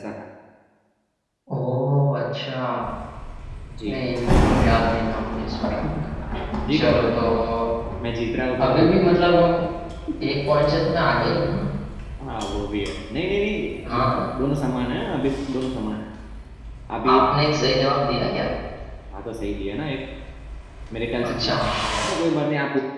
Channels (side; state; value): both; identical; correlation 1.00